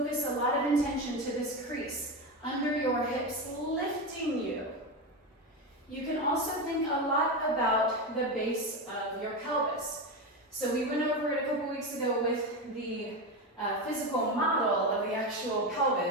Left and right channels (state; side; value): normal; both; correlation 0.17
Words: a lot of intention to this crease under your hips, lifting you. You can also think a lot about the base of your pelvis. So we went over it a couple weeks ago with the physical model of the actual